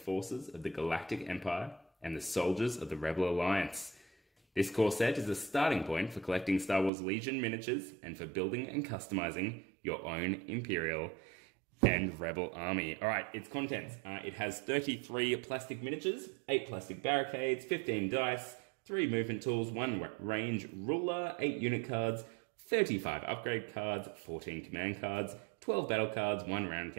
of the Galactic Empire and the soldiers of the Rebel Alliance. This core set is a starting point for collecting Star Wars Legion miniatures and for building and customizing your own Imperial and Rebel army. Alright, its contents. It has 33 plastic miniatures, 8 plastic barricades, 15 dice, 3 movement tools, 1 range ruler, 8 unit cards, 35 upgrade cards, 14 command cards, 12 battle cards, 1 round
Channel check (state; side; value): drops out; left; at 6.9 s